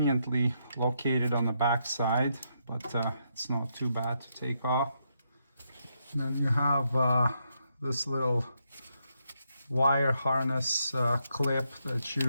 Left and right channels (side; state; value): both; inverted; correlation -0.79